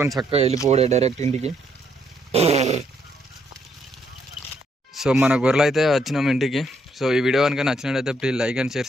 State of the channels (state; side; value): normal; both; correlation 0.73